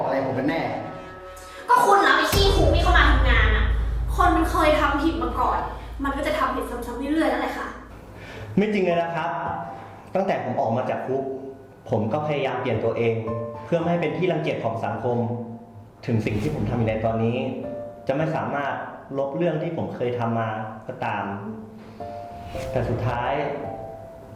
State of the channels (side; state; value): both; identical; correlation 1.00